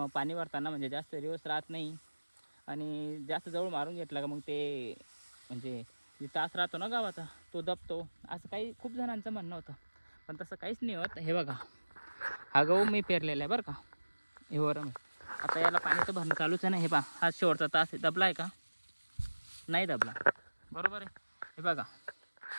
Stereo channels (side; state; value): both; inverted; correlation -1.00